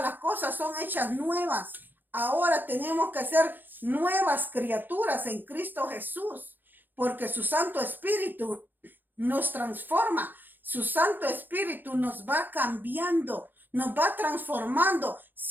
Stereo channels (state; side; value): late; left; 0.090 ms